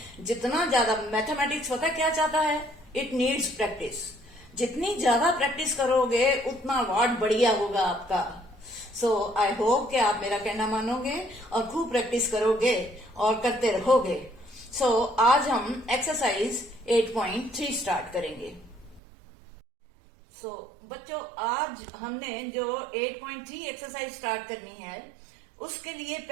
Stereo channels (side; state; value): left; drops out; at 19.0 s